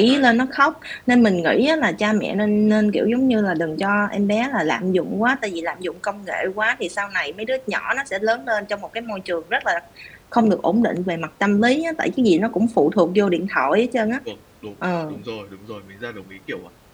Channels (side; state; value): both; identical; correlation 1.00